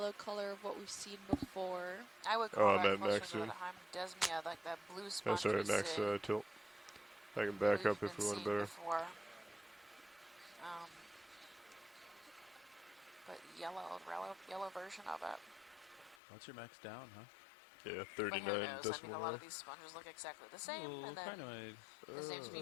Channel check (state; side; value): drops out; right; at 16.2 s